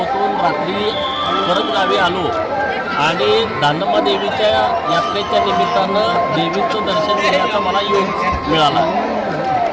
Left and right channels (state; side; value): identical; both; correlation 1.00